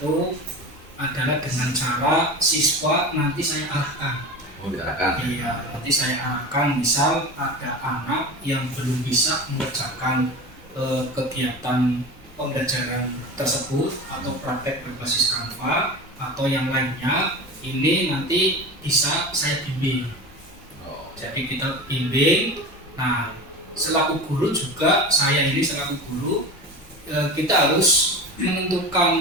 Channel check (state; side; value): normal; both; correlation 0.30